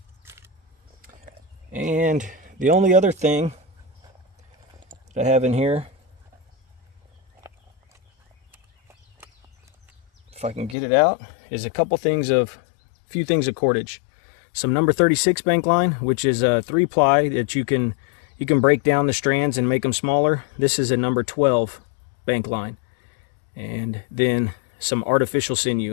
And the only other thing that I have in here, if I can get it out, is a few things of cordage. Some number 36 bank line, which is a 3-ply that you can break down the strands and make them smaller. This is a number 12 bank line. And then some artificial sinew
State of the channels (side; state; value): right; drops out; at 10.8 s